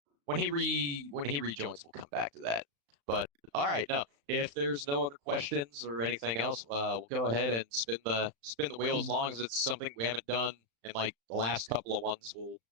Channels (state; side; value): late; left; 35 ms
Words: when he rejoins. We'll come back to that. But all right, no. If there's no other questions or anything else, we'll go ahead and spin the wheel. As long as it's something we haven't done in like the last couple of ones, we'll